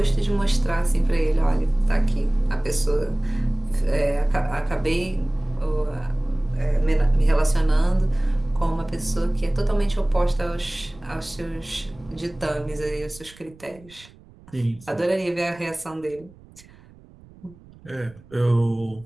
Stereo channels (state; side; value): noise; right; rumble, 24 dB below the sound